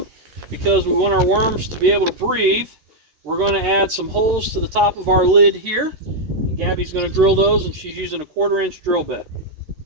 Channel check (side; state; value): left; late; 13 ms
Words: because we want our worms to be able to breathe, we're going to add some holes to the top of our lid here. And Gabby's going to drill those, and she's using a 1/4-inch drill bit.